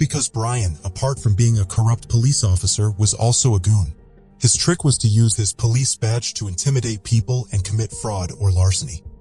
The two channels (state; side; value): identical; both; correlation 1.00